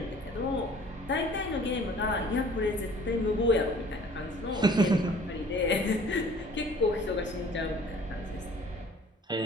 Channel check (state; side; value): normal; both; correlation 0.51